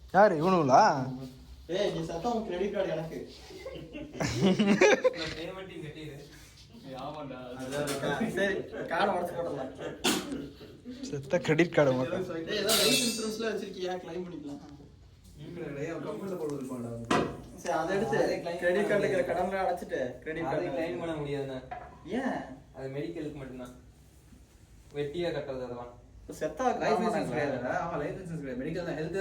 யாரு இவனுங்களா? ஏய் நீ சத்தம் கிரெடிட் கார்டு எனக்கு. நான் பேமெண்ட்டையும் கட்டிடு. ஆமாடா. சரி கார்டு உடைச்சு போடலாம். செத்த கிரெடிட் கார்டு மட்டும். ஏய் ஏதோ லைஃப் இன்சூரன்ஸ்ல வச்சிருக்கியா? கிளைம் பண்ணிக்கலாம். கம்பெனில போட்டு இருப்பான்டா. சரி அதை எடுத்து கிரெடிட் கார்டுல இருக்கிற கடன்ல அடைச்சிட்டு கிரெடிட் அதை கார்டு கிளைம் பண்ண முடியாதுண்ணா. ஏன்? அது மெடிக்கலுக்கு மட்டும்தான். வெட்டியா கட்டுறது அதெல்லாம். செத்தா லைஃப் இன்சூரன்ஸ் கிடையாதுடா. ஆமா லைஃப் இன்சூரன்ஸ் கிடையாது. மெடிக்கல் தான் ஹெல்த்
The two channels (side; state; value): both; identical; correlation 1.00